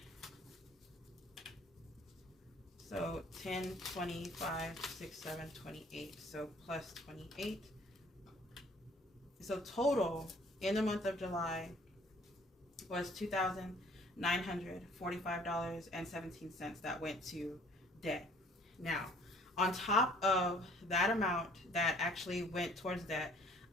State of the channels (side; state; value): both; normal; correlation 0.57